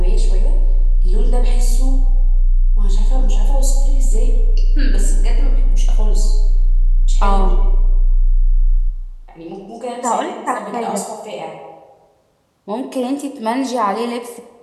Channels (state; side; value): identical; both; correlation 1.00